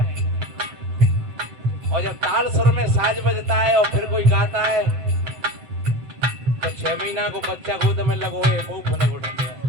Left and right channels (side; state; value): left; late; 7.7 ms